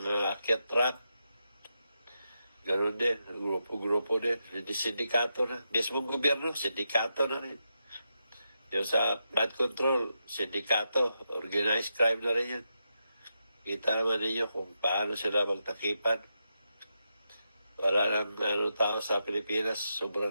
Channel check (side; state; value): both; inverted; correlation -0.86